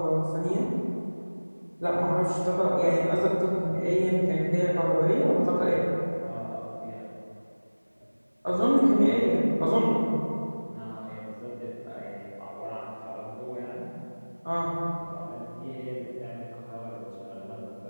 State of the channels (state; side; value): inverted; both; correlation -1.00